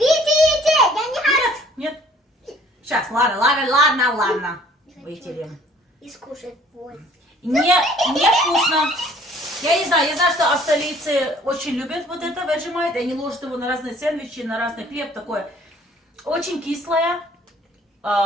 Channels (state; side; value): normal; both; correlation 0.56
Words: я не хочу. Нет. Сейчас, ладно. Вытерем. И скушать вот. Не вкусно. Я не знаю, что австралийцы очень любят вот это Vegemite. Они ложат его на разные сэндвичи, на разный хлеб такое. Очень кислое,